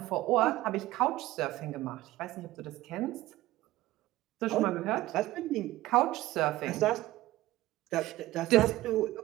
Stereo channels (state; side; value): quieter; left; 16.8 dB